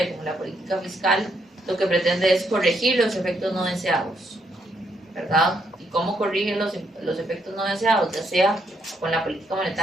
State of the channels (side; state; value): both; normal; correlation 0.75